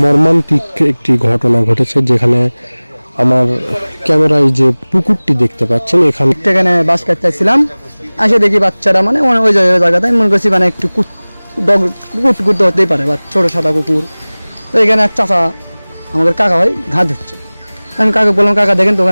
মর্মান্তিক একটি ঘটনা ঘটেছে, যেখানে আমার ক্যামেরায় যে পুকুরটি দেখতে পাচ্ছেন এখানে বাস কাটতেছিলাম, আসে দেখি বাচ্চারা মানে ওই জায়গাতে মনে করছি মানে একটু কুট হতেই পারে বা ছোটো সাদা কুকুর। তো এখানে এক চাচা আমাদের কাকা ভাই ঘাট ধরছে। আমি কাকা বললাম, কাকা দেখেন তো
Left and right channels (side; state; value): both; inverted; correlation -1.00